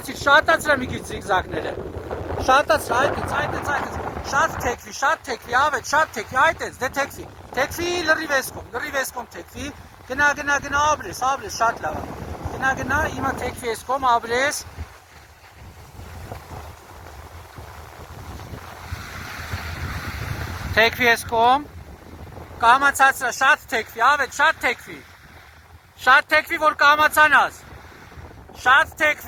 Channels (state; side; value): identical; both; correlation 1.00